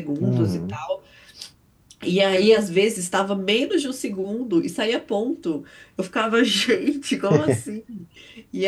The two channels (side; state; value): both; identical; correlation 1.00